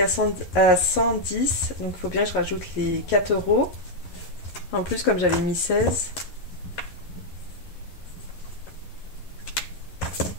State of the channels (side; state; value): right; late; 11 ms